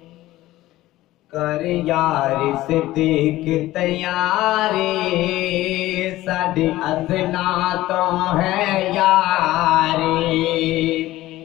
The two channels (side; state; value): right; quieter; 16.4 dB